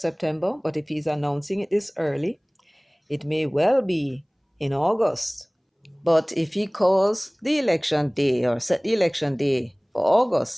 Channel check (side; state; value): both; identical; correlation 1.00